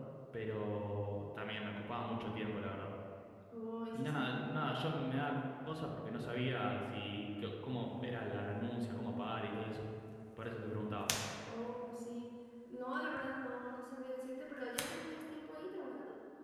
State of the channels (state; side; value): identical; both; correlation 1.00